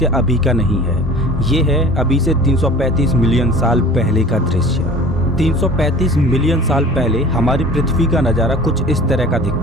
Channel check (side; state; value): both; normal; correlation 0.43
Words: अभी का नहीं है। ये है अभी से 335 मिलियन साल पहले का दृश्य। 335 मिलियन साल पहले हमारी पृथ्वी का नज़ारा कुछ इस तरह का